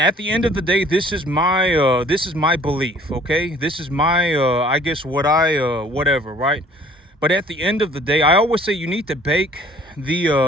at the end of the day, this is my belief, okay? This is my, I guess whatever, right? But at the end of the day, I always say you need to bake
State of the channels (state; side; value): normal; both; correlation 0.55